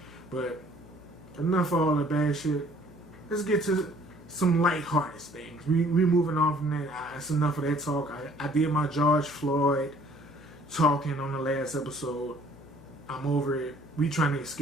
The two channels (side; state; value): left; noise; hum, 22 dB below the sound